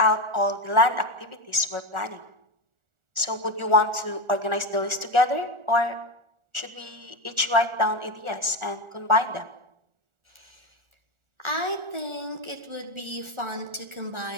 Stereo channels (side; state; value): left; late; 1.4 ms